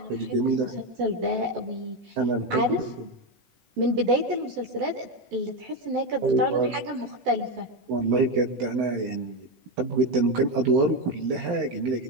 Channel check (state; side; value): late; left; 12 ms